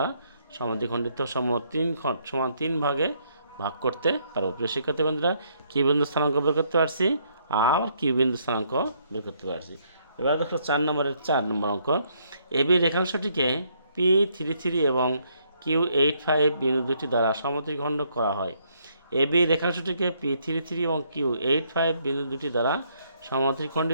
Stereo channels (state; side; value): inverted; both; correlation -0.70